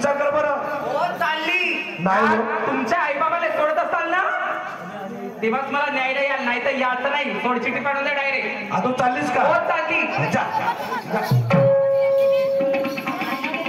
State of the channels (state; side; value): identical; both; correlation 1.00